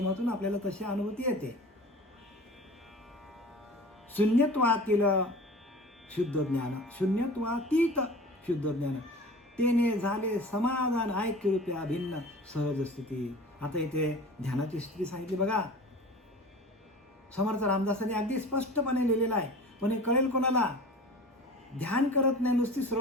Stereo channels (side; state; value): both; normal; correlation 0.39